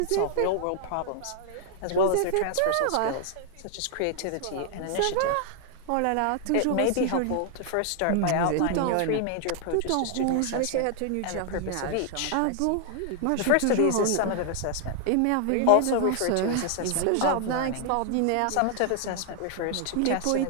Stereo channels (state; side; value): different; both; correlation 0.00